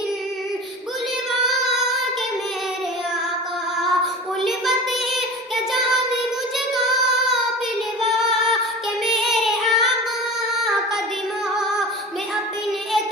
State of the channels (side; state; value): both; normal; correlation 0.35